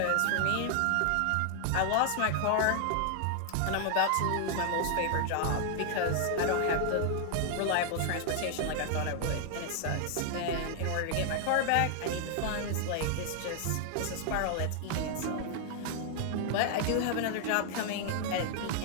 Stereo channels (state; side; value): different; both; correlation 0.00